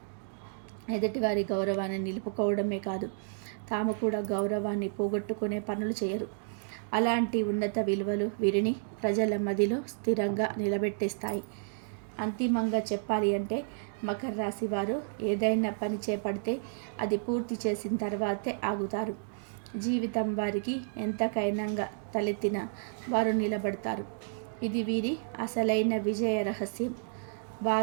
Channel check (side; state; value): left; silent; digital silence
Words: ఎదుటివారి గౌరవాన్ని నిలుపుకోవడమే కాదు, తాము కూడా గౌరవాన్ని పోగొట్టుకునే పనులు చేయరు. అలాంటి ఉన్నత విలువలు వీరిని ప్రజల మదిలో స్థిరంగా నిలబెట్టేస్తాయి. అంతిమంగా చెప్పాలి అంటే మకర రాశి వారు ఏదైనా పని చేపడితే అది పూర్తి చేసిన తర్వాతే ఆగుతారు. జీవితం వారికి ఎంతకైనా తలెత్తినా వారు నిలబడతారు. ఇది వీరి అసలైన విజయ రహస్యం.